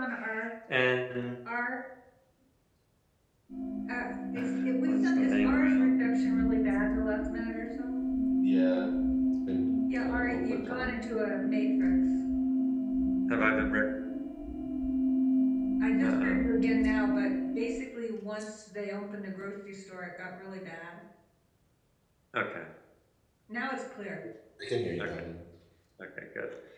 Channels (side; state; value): both; identical; correlation 1.00